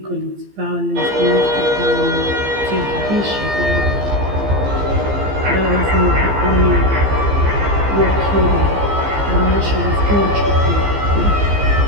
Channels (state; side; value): late; left; 15 ms